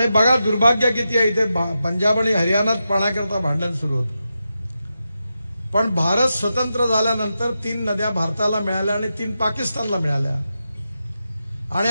बघा दुर्भाग्य किती आहे, इथे पंजाब आणि हरियाणात पाण्याकरता भांडण सुरू होतं. पण भारत स्वतंत्र झाल्यानंतर 3 नद्या भारताला मिळाल्या आणि 3 पाकिस्तानला मिळाल्या. आणि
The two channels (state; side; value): inverted; both; correlation -0.89